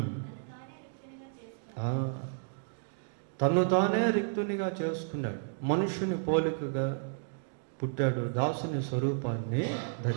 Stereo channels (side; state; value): left; silent; digital silence